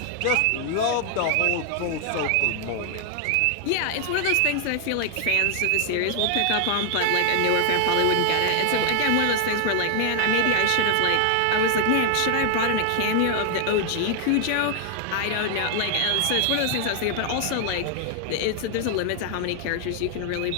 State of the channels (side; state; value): both; different; correlation 0.00